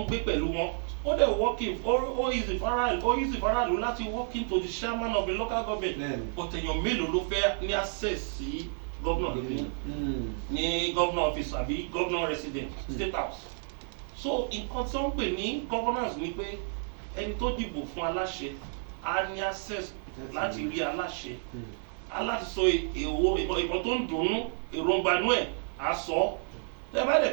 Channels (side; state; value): left; silent; 57 dB below the other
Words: gbé pẹ̀lú wọn. ó dẹ̀ working ó easy faraàlú láti walk into the chairman of the local government but èèyàn mélòó ló fẹ́ ní access sí governor ní governor office àbí governor resident state house. so nǹkan tí wọ́n ń pè ní governance ni pé ẹni tó dìbò fún aláṣẹ á ní access láti rí aláṣẹ aláti sọ ìbọn tó ń dùnnú èròǹgbà inú ẹ̀ á sọ tẹ bá